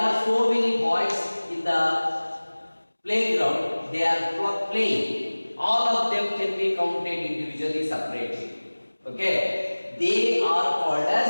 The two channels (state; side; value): inverted; both; correlation -1.00